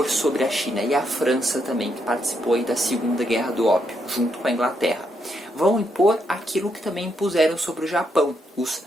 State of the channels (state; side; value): normal; both; correlation 0.78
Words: sobre a China? E a França também, que participou aí da Segunda Guerra do Ópio, junto com a Inglaterra. Vão impor aquilo que também impuseram sobre o Japão, os